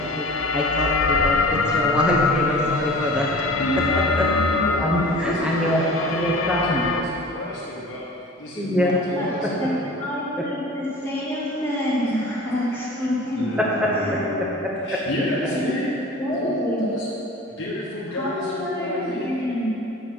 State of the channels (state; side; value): normal; both; correlation 0.41